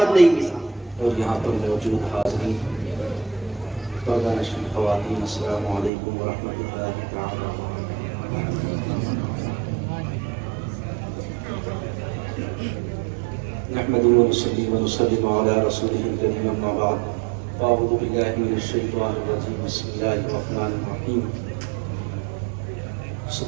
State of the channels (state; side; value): drops out; left; at 5.9 s